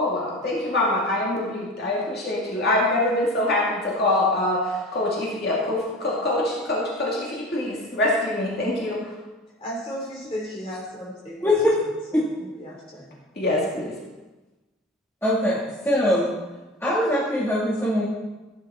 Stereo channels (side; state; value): both; normal; correlation 0.35